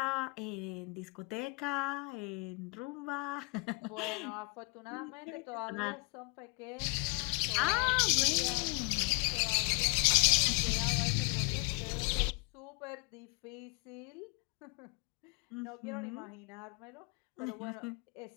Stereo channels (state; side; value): quieter; right; 31.9 dB